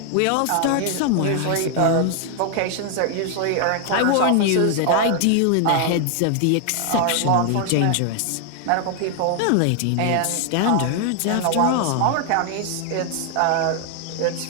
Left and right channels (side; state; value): both; different; correlation 0.00